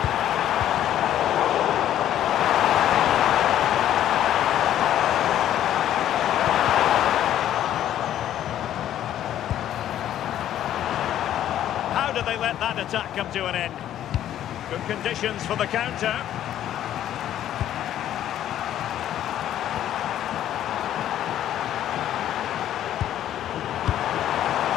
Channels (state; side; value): quieter; right; 11.6 dB